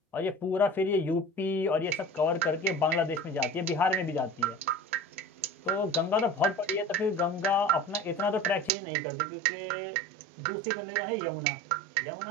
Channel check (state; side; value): drops out; left; at 8.7 s